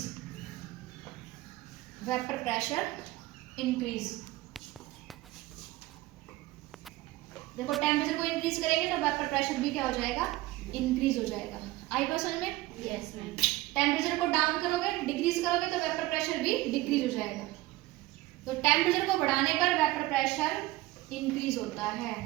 vapour pressure increase. देखो टेम्परेचर को इंक्रीज करेंगे तो वेपर प्रेशर भी क्या हो जाएगा, इंक्रीज हो जाएगा। आई बात समझ में? Yes ma'am. टेम्परेचर को डाउन करोगे, डिक्रीज करोगे तो वेपर प्रेशर भी डिक्रीज हो जाएगा। तो टेम्परेचर को बढ़ाने पर वेपर प्रेशर इंक्रीज होता है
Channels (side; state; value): left; quieter; 18.3 dB